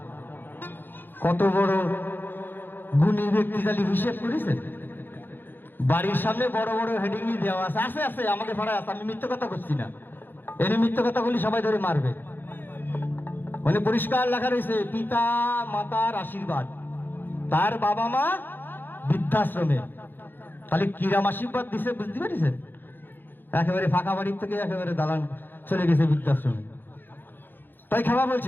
কত বড় গুণী ব্যক্তি তাহলে হিসেব করেছেন? বাড়ির সামনে বড় বড় হেডিং দেওয়া আছে। আছে আছে, আমাদের পাড়ায় আছে, আমি মিথ্যে কথা করছি না। এর মিথ্যে কথা বলি সবাই ধরে মারবে। মানে পরিষ্কার লেখা রয়েছে পিতা মাতার আশীর্বাদ, তার বাবা মা বৃদ্ধাশ্রমে। তাহলে কিরাম আশীর্বাদ দিছে, বুঝতে পেরেছেন? একেবারে ফাঁকা বাড়ির থেকে একেবারে দালান চলে গেছে বৃদ্ধাশ্রমে। তাই খাওয়া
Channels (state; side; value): late; right; 0.095 ms